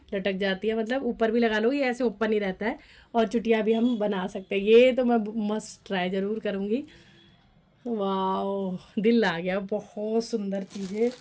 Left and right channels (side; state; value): both; identical; correlation 1.00